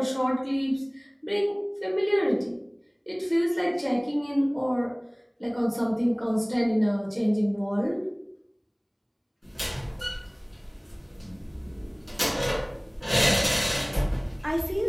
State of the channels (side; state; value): both; identical; correlation 1.00